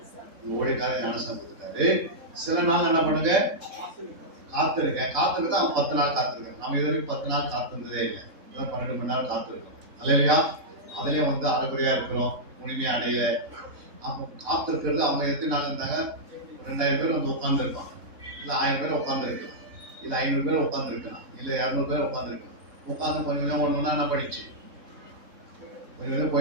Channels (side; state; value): left; late; 3.7 ms